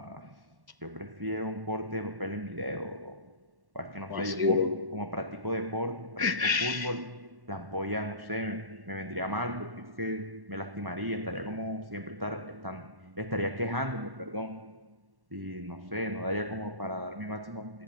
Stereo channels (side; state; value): left; late; 1.1 ms